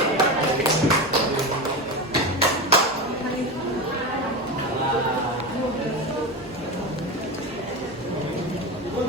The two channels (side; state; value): both; normal; correlation 0.21